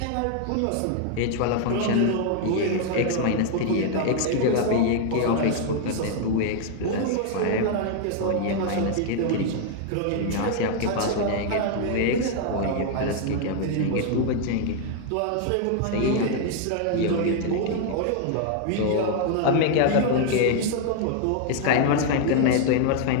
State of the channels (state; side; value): different; both; correlation 0.00